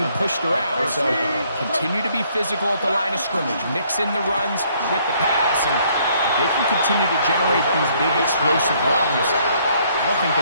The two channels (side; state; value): both; inverted; correlation -0.65